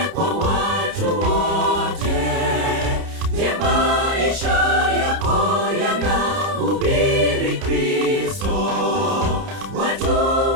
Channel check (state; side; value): late; left; 30 ms